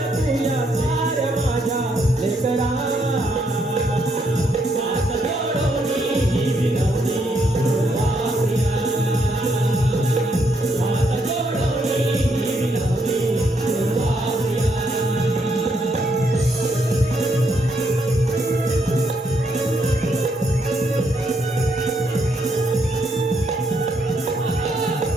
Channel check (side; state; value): both; normal; correlation 0.75